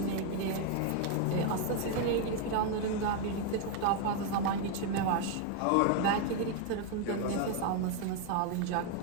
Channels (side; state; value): both; different; correlation 0.01